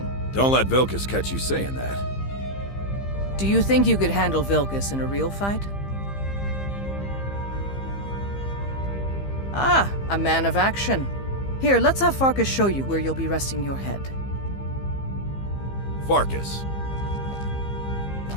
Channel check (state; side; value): late; right; 15 ms